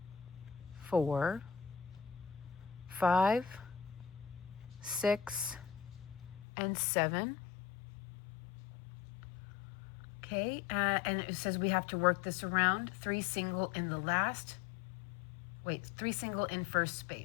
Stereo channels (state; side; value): drops out; right; at 6.5 s